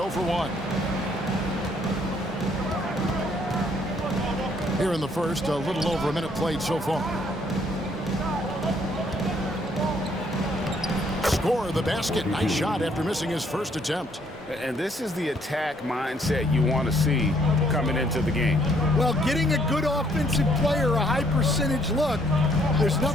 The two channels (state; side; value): normal; both; correlation 0.66